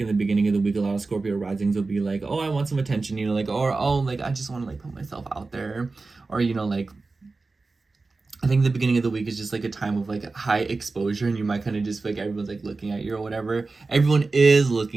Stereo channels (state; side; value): quieter; left; 3.8 dB